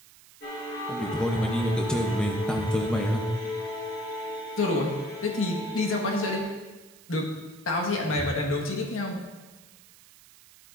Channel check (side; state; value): right; noise; hiss, 23 dB below the sound